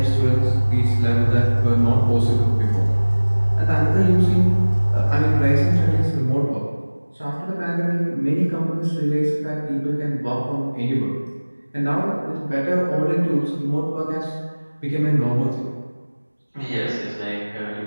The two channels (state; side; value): inverted; both; correlation -1.00